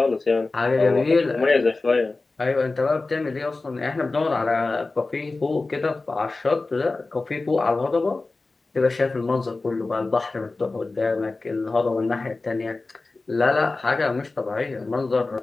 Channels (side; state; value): right; quieter; 3.5 dB